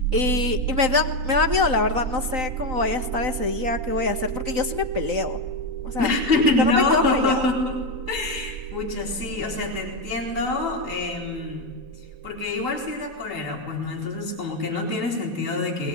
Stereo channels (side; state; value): left; late; 3.9 ms